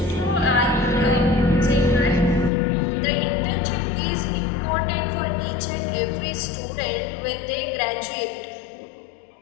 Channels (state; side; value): drops out; right; at 2.5 s